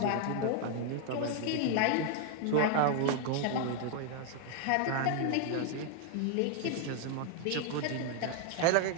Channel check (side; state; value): both; different; correlation 0.00